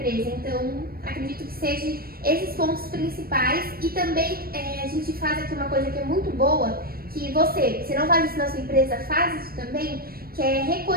Então, acredito que sejam esses pontos principais. E também a gente faz aqui uma coisa que é muito boa, que você não faz isso na sua empresa, faz isso também, que é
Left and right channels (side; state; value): left; late; 0.44 ms